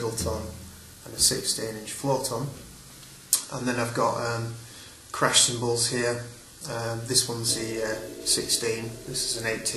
tom, and a 16-inch floor tom. And then I've got crash cymbals here. This one's the 16, this is an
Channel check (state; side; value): identical; both; correlation 1.00